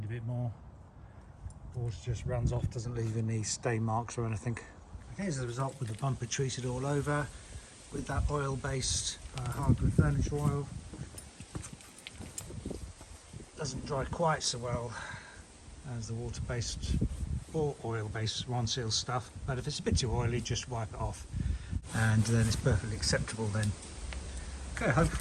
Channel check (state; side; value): identical; both; correlation 1.00